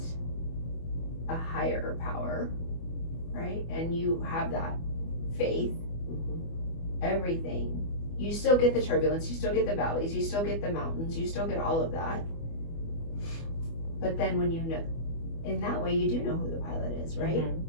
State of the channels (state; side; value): late; right; 24 ms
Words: a higher power, right, and you have that faith, everything, you still get the turbulence, you still get the valleys, you still get the mountains, you still get all of that. But then when you know, in that way, you do know who the pilot is, right?